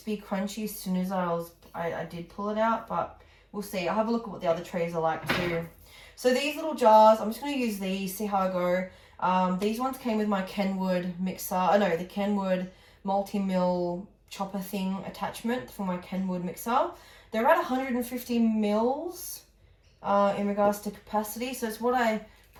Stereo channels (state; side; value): identical; both; correlation 1.00